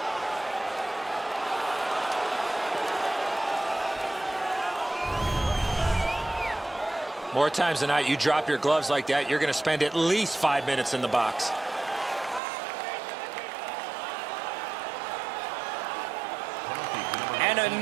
More times than not, you drop your gloves like that, you're going to spend at least 5 minutes in the box. An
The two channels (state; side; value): drops out; left; at 12.4 s